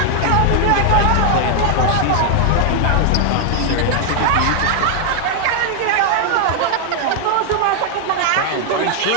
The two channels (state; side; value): different; both; correlation 0.00